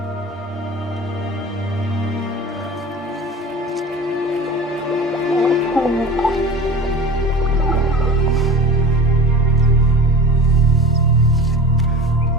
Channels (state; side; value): normal; both; correlation 0.36